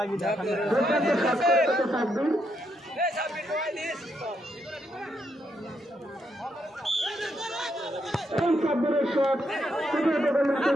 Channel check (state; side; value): normal; both; correlation 0.78